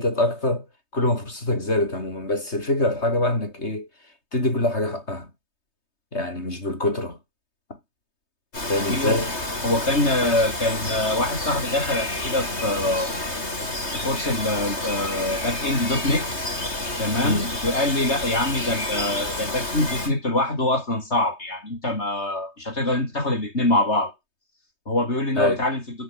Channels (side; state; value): right; late; 3.2 ms